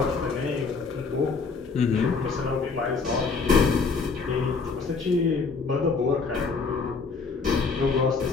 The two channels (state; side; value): quieter; right; 4.7 dB